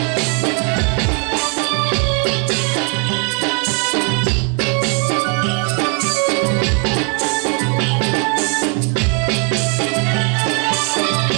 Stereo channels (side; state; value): left; quieter; 38.4 dB